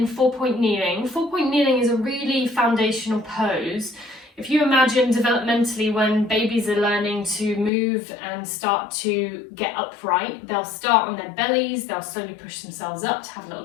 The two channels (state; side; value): drops out; right; at 7.7 s